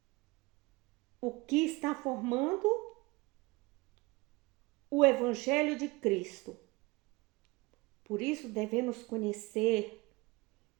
O que está formando o Evangelho de Cristo. Por isso devemos conhecer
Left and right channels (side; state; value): left; quieter; 23.4 dB